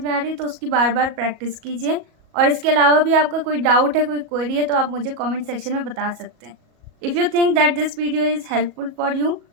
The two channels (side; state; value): left; late; 37 ms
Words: में आ रही तो उसकी बार बार प्रैक्टिस कीजिए। और इसके अलावा भी आपका कोई डाउट है, कोई क्वेरी है तो आप मुझे कमेंट सेक्शन में बता सकते हैं। If you think that this video is helpful for you,